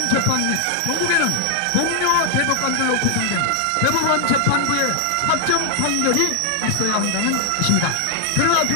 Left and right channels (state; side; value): different; both; correlation 0.01